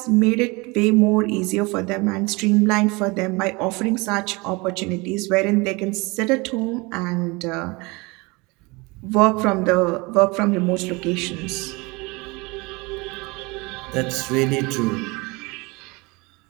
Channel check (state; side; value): quieter; left; 25.8 dB